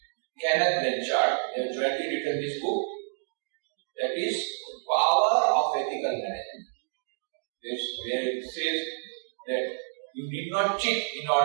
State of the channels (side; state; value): left; silent; digital silence